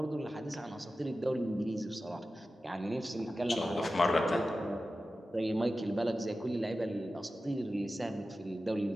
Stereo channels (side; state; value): both; normal; correlation 0.94